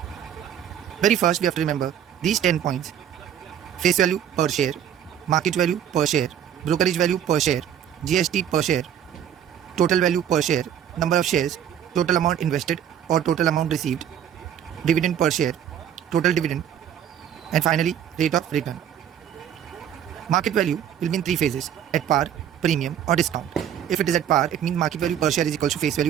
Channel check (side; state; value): left; quieter; 9.6 dB